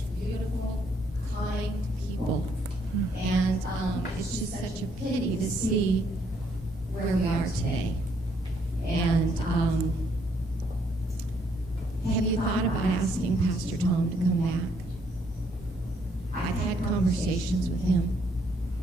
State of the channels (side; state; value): both; normal; correlation 0.70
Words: beautiful, kind people, and it's just such a pity to see where we are today. And have you thought about asking Pastor Tom to come back? I've had conversations with him,